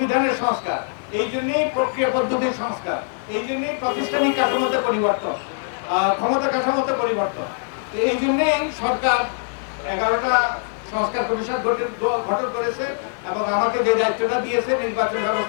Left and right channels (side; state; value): right; silent; 64 dB below the other